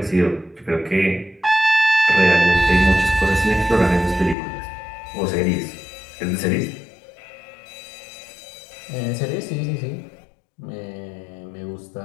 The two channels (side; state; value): right; drops out; at 4.4 s